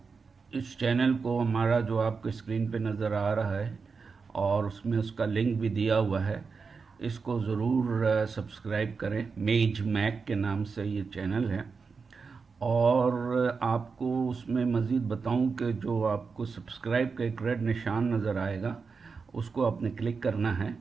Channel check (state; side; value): quieter; left; 5.0 dB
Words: इस चैनल को हमारा जो आपके स्क्रीन पे नज़र आ रहा है और उसमें उसका लिंक भी दिया हुआ है, इसको ज़रूर सब्सक्राइब करें। मेज मैक के नाम से ये चैनल है। और आपको उसमें मज़ीद बताऊं कि जो आपको सब्सक्राइब का एक रेड निशान नज़र आएगा, उसको आपने क्लिक करना है।